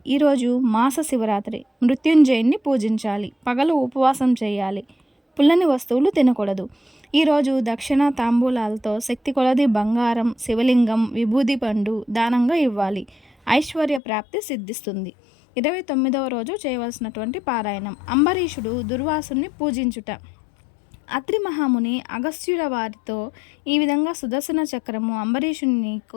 ఈరోజు మాస శివరాత్రి. మృత్యుంజయుని పూజించాలి. పగలు ఉపవాసం చేయాలి. పుల్లని వస్తువులు తినకూడదు. ఈరోజు దక్షిణ తాంబూలాలతో శక్తి కొలది బంగారం, శివలింగం, విభూది పండు దానంగా ఇవ్వాలి. ఐశ్వర్య ప్రాప్తి సిద్ధిస్తుంది. 29వ రోజు చేయవలసినటువంటి పారాయణం. అంబరీషుడు దుర్వాసుని పూజించుట. అత్రి మహాముని అగస్త్యుల వారితో ఈ విధంగా సుదర్శన చక్రము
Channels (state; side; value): drops out; right; at 14.0 s